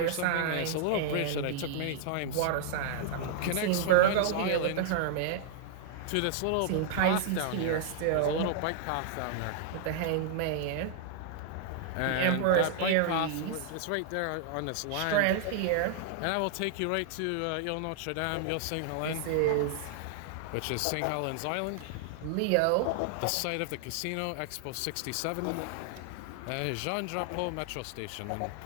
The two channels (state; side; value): different; both; correlation -0.01